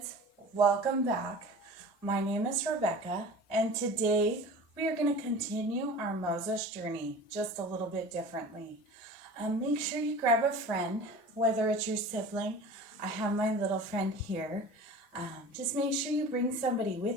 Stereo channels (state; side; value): normal; both; correlation 0.38